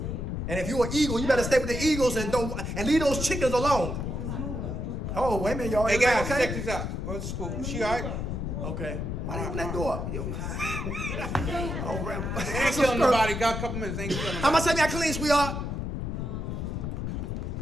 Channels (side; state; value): left; noise; rumble, 3 dB below the sound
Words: And if you're an eagle, you better stay with the eagles and leave those chickens alone. Oh, wait a minute, y'all. Hey guys, okay? check this out. What's school? She all right? Okay. Why did you open that door up? Ain't killing nobody. Got a couple minutes. Ain't killing nobody. How much time y'all clean, sweetheart?